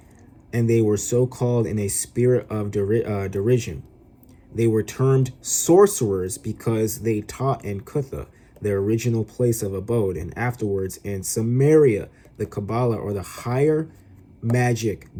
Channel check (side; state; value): both; identical; correlation 1.00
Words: and they were so called in a spirit of derision. They were termed sorcerers because they taught in Cutha, their original place of abode, and afterwards in Samaria, the Kabbalah, or the higher magic